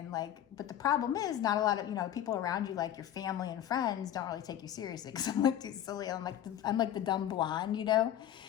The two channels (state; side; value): quieter; right; 11.2 dB